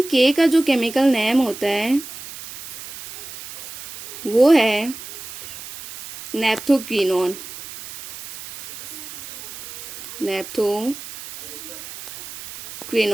के का जो केमिकल नेम होता है वो है नेप्थोक्विनोन। नेप्थोक्विनोन।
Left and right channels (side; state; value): right; noise; hiss, 12 dB below the sound